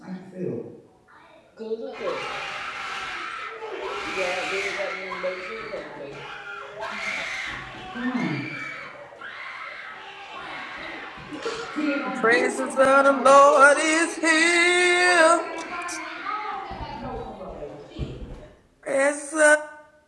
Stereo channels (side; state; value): both; identical; correlation 1.00